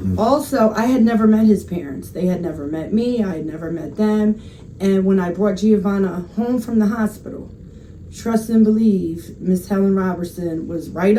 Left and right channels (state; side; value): identical; both; correlation 1.00